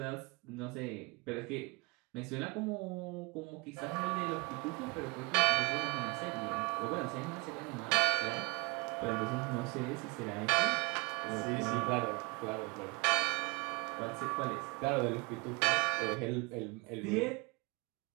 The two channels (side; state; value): left; quieter; 28.6 dB